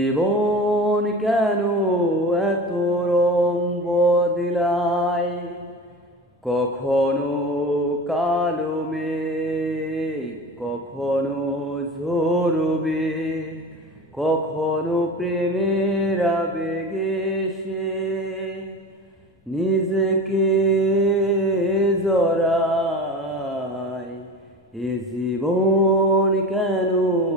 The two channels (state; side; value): normal; both; correlation 0.32